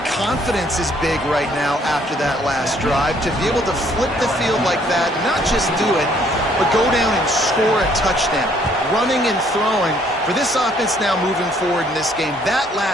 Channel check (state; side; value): normal; both; correlation 0.64